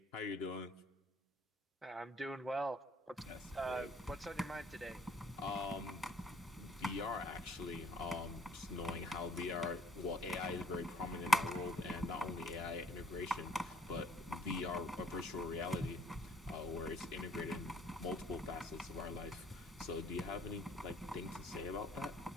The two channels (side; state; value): both; normal; correlation 0.61